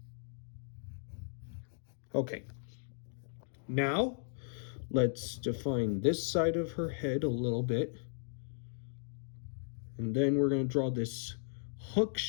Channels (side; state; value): right; silent; digital silence